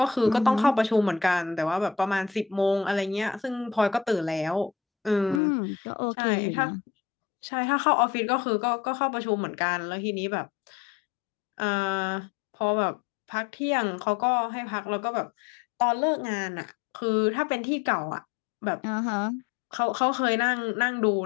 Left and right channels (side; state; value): right; drops out; at 5.4 s